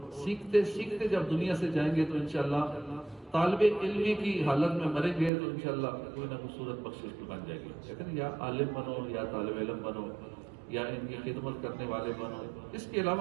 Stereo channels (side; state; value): left; drops out; at 5.3 s